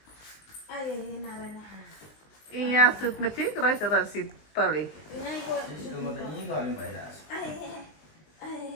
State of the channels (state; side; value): late; right; 19 ms